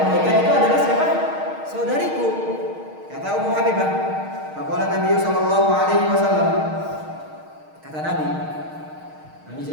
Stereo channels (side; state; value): left; late; 6.4 ms